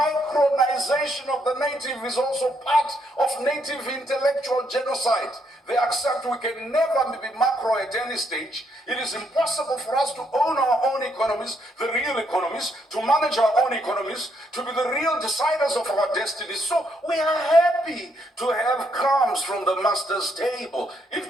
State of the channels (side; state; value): both; normal; correlation 0.74